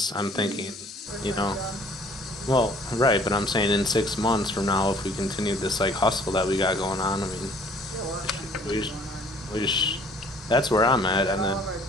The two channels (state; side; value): normal; both; correlation 0.56